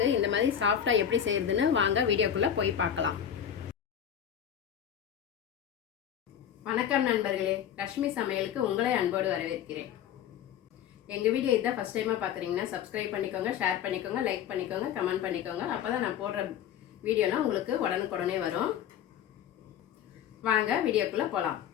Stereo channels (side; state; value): right; quieter; 9.5 dB